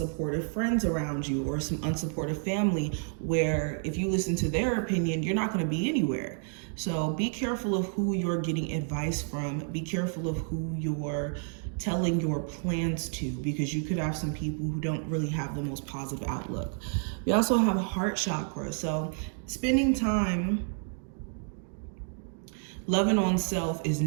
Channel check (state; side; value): silent; left; 55 dB below the other